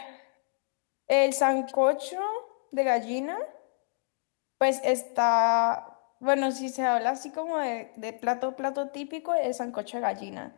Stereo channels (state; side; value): silent; right; digital silence